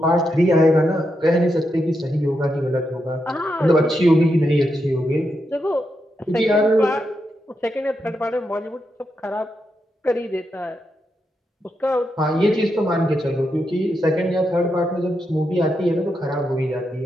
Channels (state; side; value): normal; both; correlation 0.84